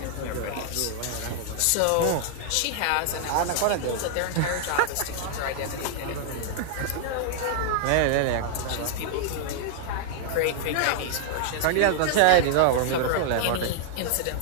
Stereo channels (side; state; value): both; different; correlation 0.00